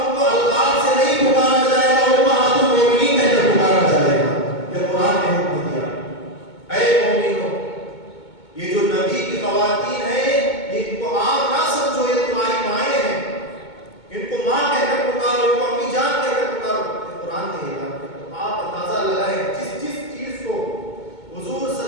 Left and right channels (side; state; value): right; late; 2.2 ms